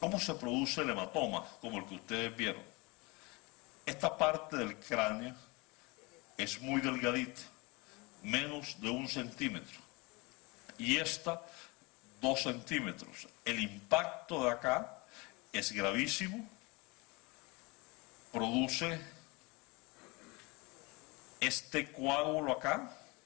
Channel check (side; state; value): right; quieter; 26.2 dB